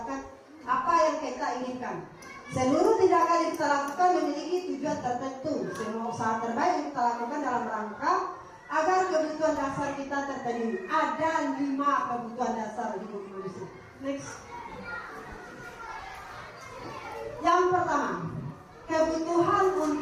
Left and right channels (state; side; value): identical; both; correlation 1.00